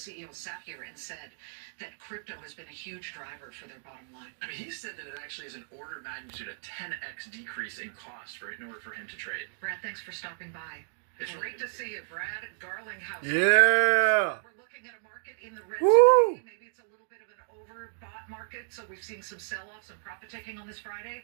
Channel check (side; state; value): left; silent; digital silence